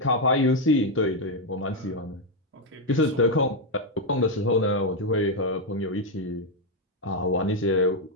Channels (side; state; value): both; normal; correlation 0.03